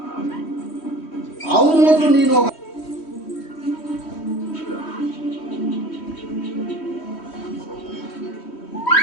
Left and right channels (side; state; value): right; late; 3.1 ms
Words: ಅವನು ಮಾತ್ರ ನೀನು ಹೋಗ